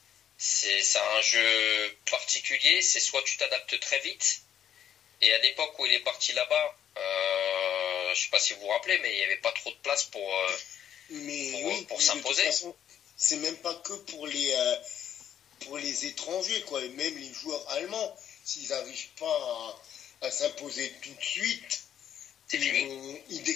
c'est un jeu particulier, c'est soit tu t'adaptes très vite, et à l'époque où il est parti là-bas, je sais pas si vous vous rappelez, mais il n'y avait pas trop de place pour s'imposer. C'est même pas que pour les étrangers, quoi. Et même les joueurs allemands, s'ils n'arrivent pas à s'imposer tout de suite, ils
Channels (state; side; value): quieter; right; 9.7 dB